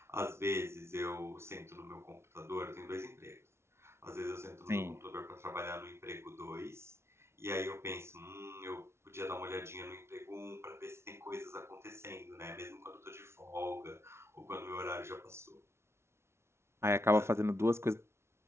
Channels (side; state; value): left; late; 0.13 ms